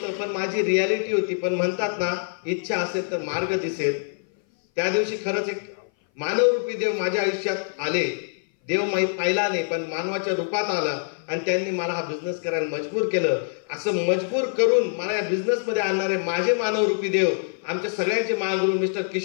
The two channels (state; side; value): silent; right; 58 dB below the other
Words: पण माझी रियालिटी होती. पण म्हणतात ना, इच्छा असेल तर मार्ग दिसेल. त्या दिवशी खरंच एक मानवरूपी देव माझ्या आयुष्यात आले. देव पाहिला नाही, पण मानवाच्या रूपात आला आणि त्यांनी मला हा बिझनेस करायला मजबूर केलं. असं मजबूर करून मला या बिझनेस मध्ये आणणारे माझे मानवरूपी देव, आमच्या सगळ्यांचे महागुरू मिस्टर